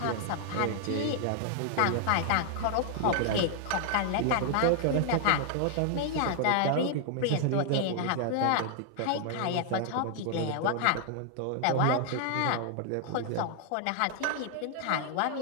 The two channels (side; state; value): both; different; correlation 0.00